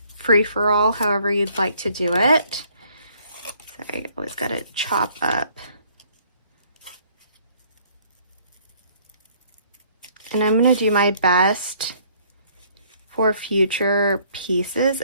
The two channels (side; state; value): both; inverted; correlation -0.62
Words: free-for-all, however you'd like to do it. Sorry, I always got to chop up. And I'm going to do my best for future pieces,